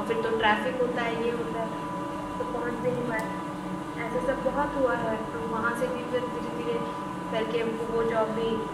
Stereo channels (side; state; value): both; identical; correlation 1.00